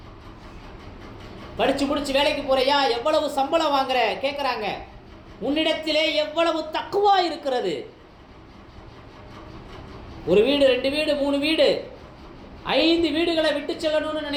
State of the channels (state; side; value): identical; both; correlation 1.00